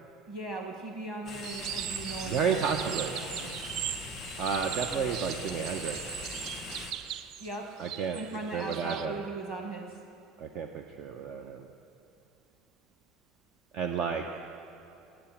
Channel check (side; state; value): left; quieter; 5.1 dB